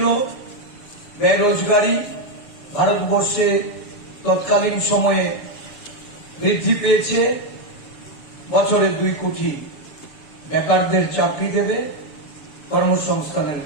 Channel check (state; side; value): late; right; 7.0 ms